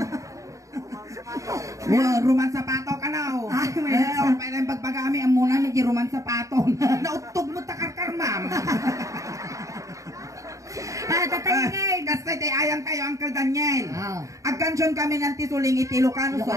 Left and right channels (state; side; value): late; left; 0.16 ms